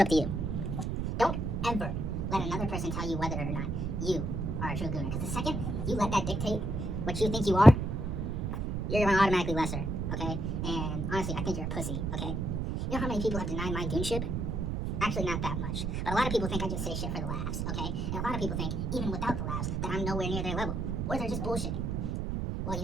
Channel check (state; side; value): noise; right; rumble, 1 dB below the sound